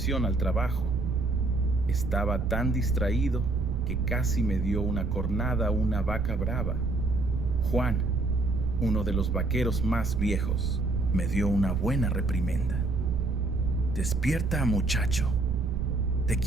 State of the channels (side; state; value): right; noise; rumble, 3 dB below the sound